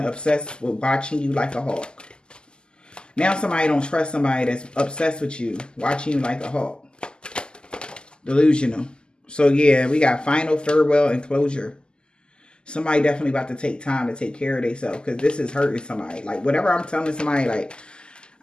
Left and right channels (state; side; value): late; right; 0.047 ms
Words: obsessed with watching you like a hawk. Now somebody don't trust somebody that's obsessed with you, watching you like a hawk. Delusional. So yeah, we got final, farewell, and closure. Somebody definitely about to take time to take care of themselves, because this is hurting somebody. Like, whatever I'm telling somebody, like,